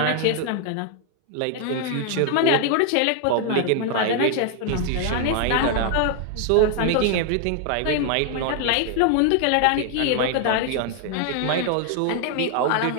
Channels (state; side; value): different; both; correlation 0.00